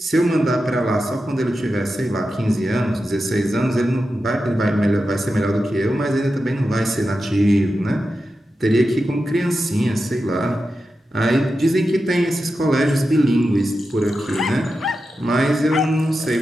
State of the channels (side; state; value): both; normal; correlation 0.90